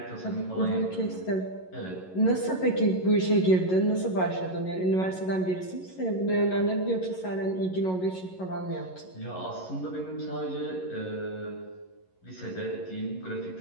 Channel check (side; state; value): right; late; 11 ms